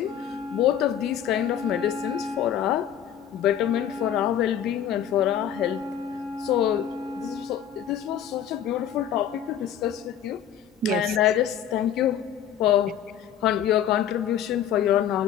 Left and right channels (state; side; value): quieter; right; 9.5 dB